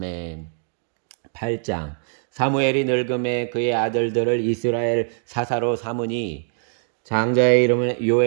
8장. 사무엘이 늙음에 그의 아들들을 이스라엘 사사로 삼으니 장자의 이름은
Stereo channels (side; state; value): left; silent; digital silence